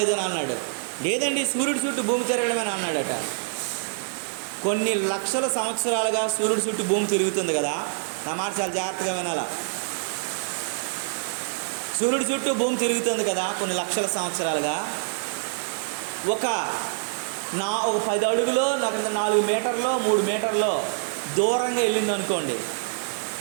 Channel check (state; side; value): silent; left; digital silence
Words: అని అన్నాడు. లేదండి సూర్యుడి చుట్టూ భూమి తిరగడమేని అన్నాడట. కొన్ని లక్షల సంవత్సరాలుగా సూర్యుడి చుట్టూ భూమి తిరుగుతుంది కదా. నా మాట చాలా జాగ్రత్తగా వినాలా. సూర్యుడి చుట్టూ భూమి తిరుగుతుంది కదా కొన్ని లక్షల సంవత్సరాలుగా. ఒక 10 అడుగులో 4 మీటర్లో 3 మీటర్లో దూరంగా వెళ్ళింది అనుకోండి.